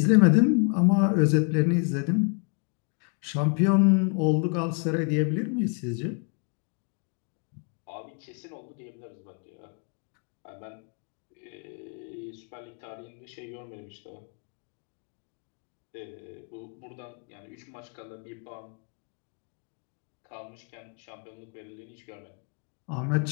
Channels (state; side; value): quieter; right; 40.0 dB